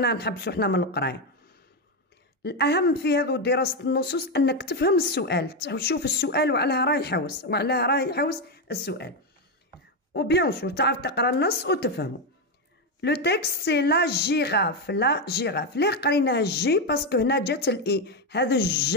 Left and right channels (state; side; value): normal; both; correlation 0.08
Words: نحبسو حنا من القرايه. الاهم في هذو دراسه النصوص انك تفهم السؤال، تشوف السؤال وعلاه راه يحوس وعلاه راه يحوس السؤال، وبيان سور تعرف تقرا النص وتفهمه. لو تكست سي لا جيراف. لا جيراف ليه قريناها الجي؟ باسكو هنا جات الاي، هذا